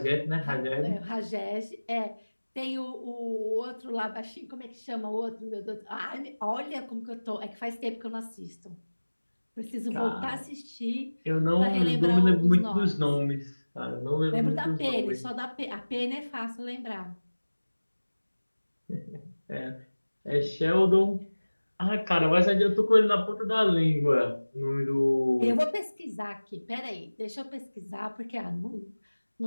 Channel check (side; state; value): both; inverted; correlation -1.00